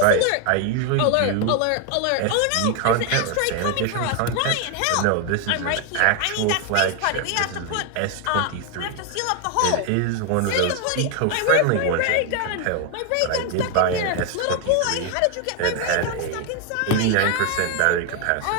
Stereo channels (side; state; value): both; different; correlation 0.01